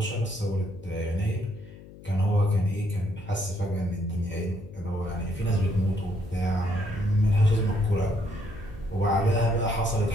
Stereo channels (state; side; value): noise; left; hum, 18 dB below the sound